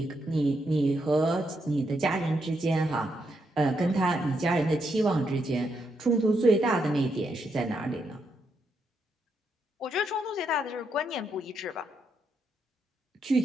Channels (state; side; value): normal; both; correlation 0.80